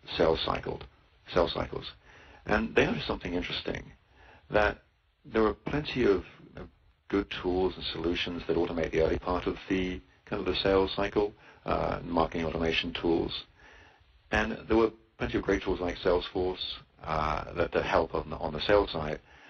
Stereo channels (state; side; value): identical; both; correlation 1.00